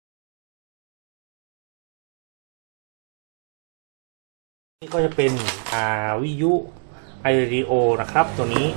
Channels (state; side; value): silent; left; 58 dB below the other